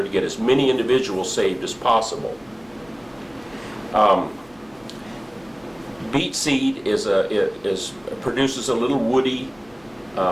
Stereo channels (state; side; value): noise; left; hum, 29 dB below the sound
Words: to get as many individuals saved as possible. Beet seed produces a little woody